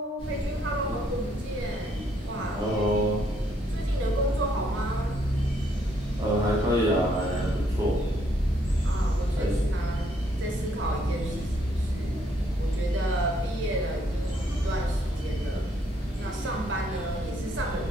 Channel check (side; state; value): both; normal; correlation 0.70